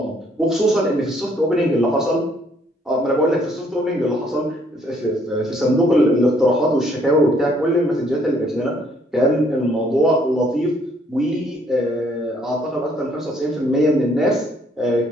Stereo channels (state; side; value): normal; both; correlation 0.66